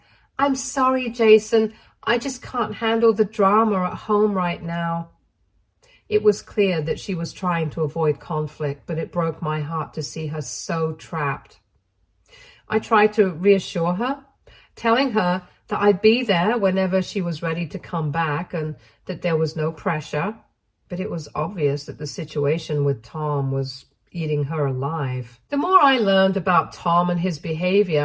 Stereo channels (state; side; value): identical; both; correlation 1.00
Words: "I'm sorry, Jason. I just can't handle the drama at home right now." It was clear that she was trying to avoid conflict, but it broke my heart to see her so trapped. I tried to reassure her, telling her that I'd be there whenever she was ready to come back and that there was no pressure. But it was obvious that the situation with Tom was eating her alive. The more I learned about Tom and his